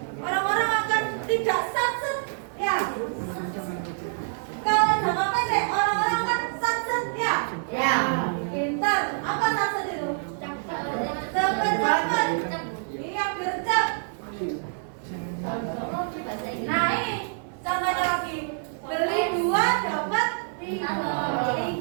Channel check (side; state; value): left; silent; 61 dB below the other